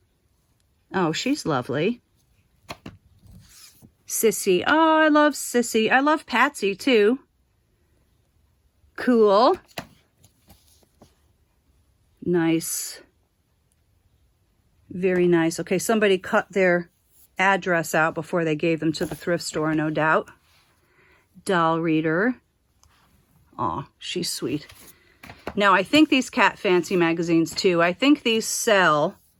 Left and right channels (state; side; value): identical; both; correlation 1.00